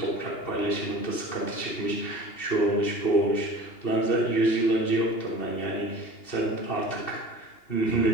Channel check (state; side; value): late; right; 2.7 ms